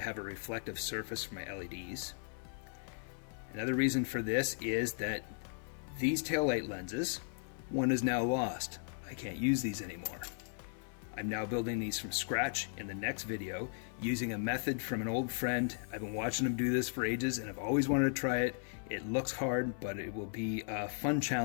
a reflective surface for my LEDs. Another reason for this is that these taillight lenses, one is now lost. I can't use these anymore. I'm now building these from scratch in the next video using a method from an old friend. I've been watching him do this for ages and I've always wanted to try it. It looks hard, but it will be a fun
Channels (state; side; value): silent; right; 53 dB below the other